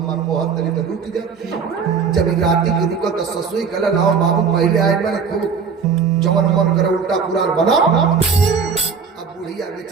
बहुत तरी तो रुक जा। जब राती की रुका तो ससुई कहला लाओ बाबू पहले आए मैंने खूब जवन मन करे उल्टा पुराण बना। अब बुढ़िया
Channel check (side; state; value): left; quieter; 5.9 dB